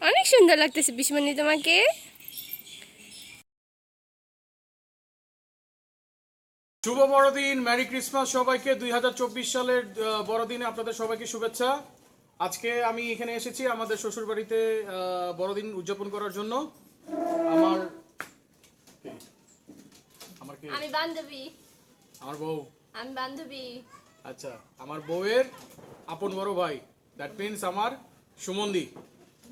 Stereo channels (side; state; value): both; identical; correlation 1.00